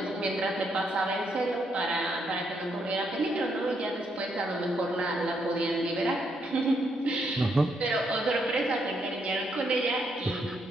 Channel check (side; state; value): both; normal; correlation 0.76